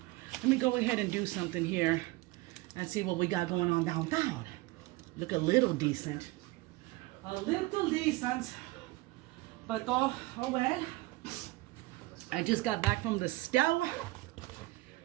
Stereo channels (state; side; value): quieter; left; 20.3 dB